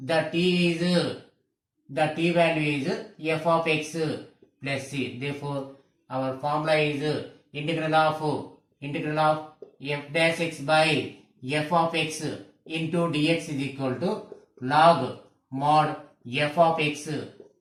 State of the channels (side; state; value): both; identical; correlation 1.00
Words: t value is f of x plus c. Therefore, our formula is integral of f dash x by f of x into dx is equal to log mod f of x